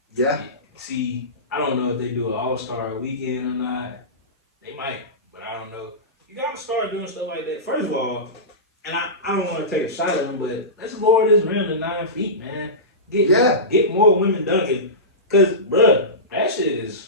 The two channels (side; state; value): both; normal; correlation -0.19